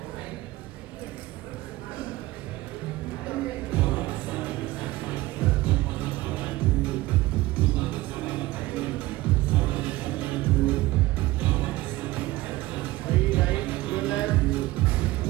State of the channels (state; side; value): quieter; left; 18.4 dB